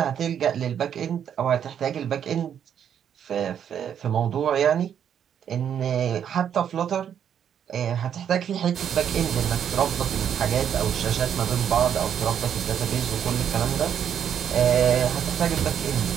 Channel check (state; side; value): quieter; left; 8.8 dB